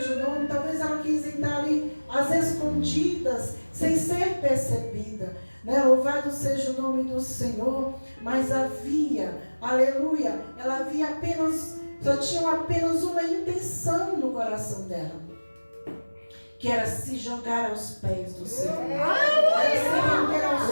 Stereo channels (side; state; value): both; inverted; correlation -1.00